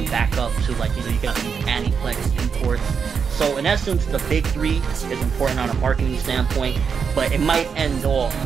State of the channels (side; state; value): left; quieter; 6.2 dB